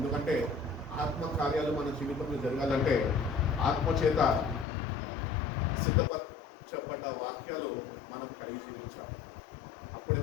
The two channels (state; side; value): drops out; right; at 4.7 s